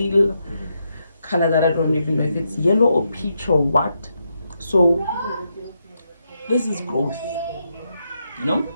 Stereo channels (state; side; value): inverted; both; correlation -0.82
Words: color that I don't even know if it's yellow or peach or what. So this is growth, you know.